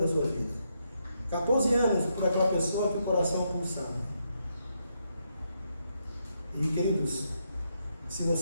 sua vida. 14 anos por aquela pessoa que o coração pulsava. E queridos, se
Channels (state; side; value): inverted; both; correlation -0.79